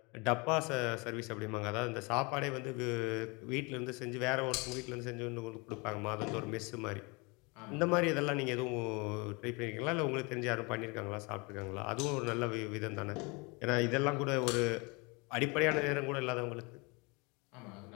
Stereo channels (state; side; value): quieter; right; 28.7 dB